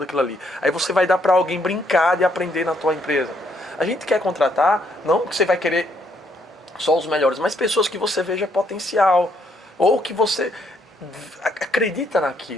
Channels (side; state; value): both; normal; correlation 0.71